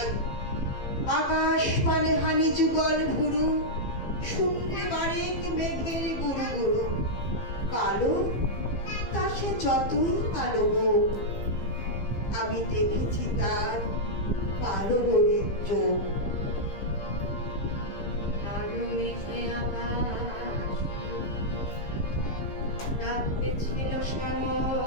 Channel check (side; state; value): right; late; 15 ms